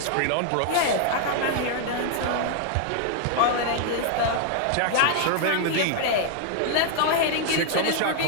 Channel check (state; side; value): different; both; correlation 0.00